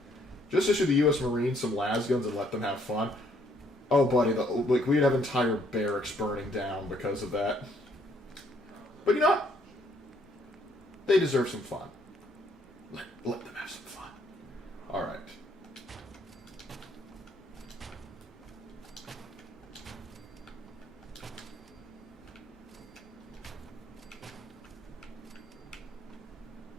Just issue the U.S. Marines some las guns and let them have fun. Oh, buddy, like we'd have entire barracks burning down because of that. But you know what? They deserve some fun. Let them have some fun. All right.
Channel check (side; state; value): both; normal; correlation 0.67